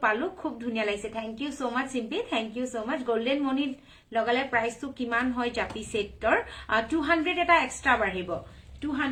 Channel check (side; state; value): both; identical; correlation 1.00